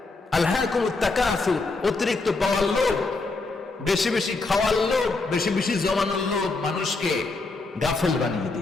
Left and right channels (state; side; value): quieter; right; 3.6 dB